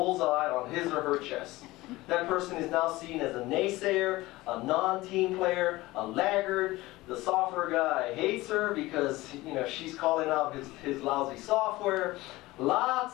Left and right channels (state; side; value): quieter; right; 19.2 dB